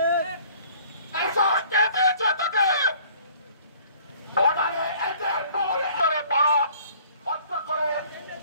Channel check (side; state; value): both; inverted; correlation -0.54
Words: এই সাহস কে দিয়েছে তোকে? বর্ডারে এদের বলে পাড়া হত্যা করে